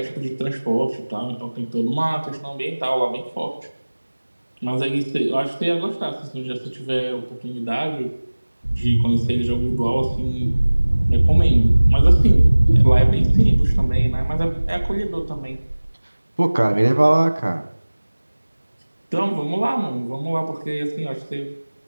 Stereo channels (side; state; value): both; inverted; correlation -1.00